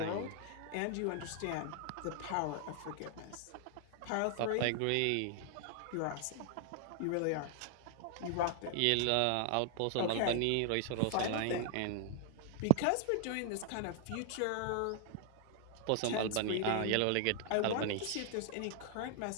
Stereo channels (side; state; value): both; different; correlation 0.00